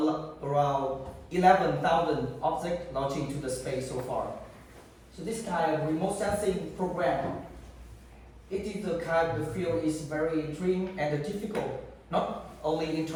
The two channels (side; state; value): both; identical; correlation 1.00